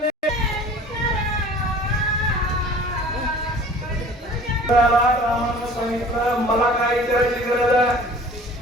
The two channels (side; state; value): both; normal; correlation 0.46